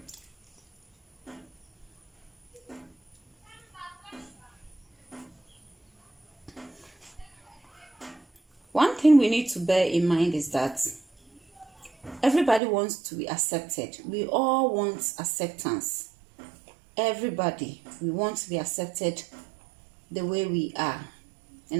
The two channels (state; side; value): drops out; left; at 12.6 s